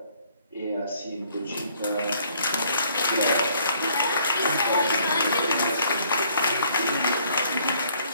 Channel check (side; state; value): both; inverted; correlation -0.63